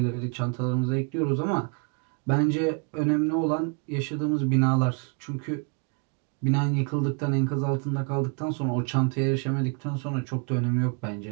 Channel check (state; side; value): quieter; left; 37.0 dB